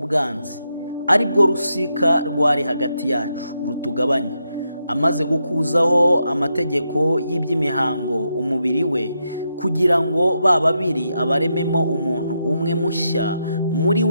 ari bwo rusika rwari hagati yacu rutugabanya, amaze gukuzaho amategeko y'iby'imihango umubiri we, kugira ngo babiri abarememo umuntu umwe mushya muri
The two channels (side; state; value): both; inverted; correlation -0.83